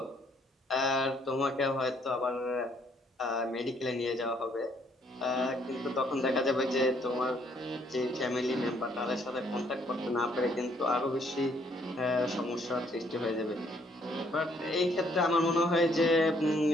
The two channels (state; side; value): normal; both; correlation 0.67